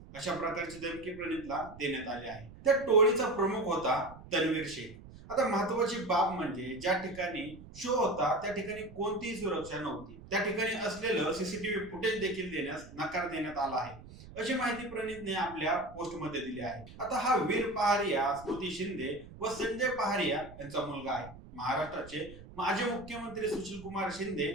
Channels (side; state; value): right; noise; rumble, 17 dB below the sound